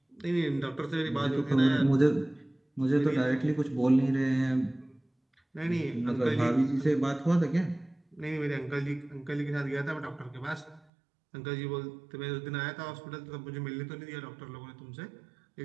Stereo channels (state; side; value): drops out; left; at 10.8 s